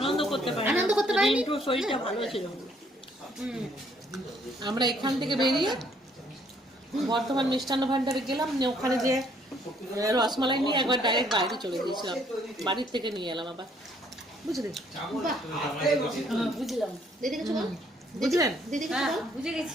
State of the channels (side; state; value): both; normal; correlation 0.65